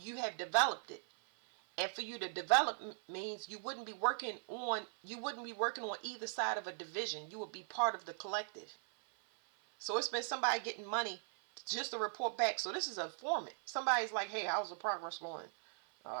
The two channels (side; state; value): left; silent; 51 dB below the other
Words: have developed it. And for you to develop means you wouldn't be working on either side of a division. You would be part of the collective. So it's been somebody getting money just to report back. So this is a informant. Somebody's like, hey, how's the progress going?